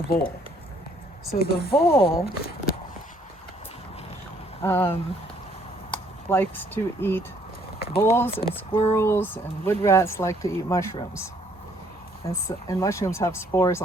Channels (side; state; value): both; normal; correlation 0.64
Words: vole. So the vole likes to eat, voles and squirrels and wood rats like to eat mushrooms. And mushrooms have spores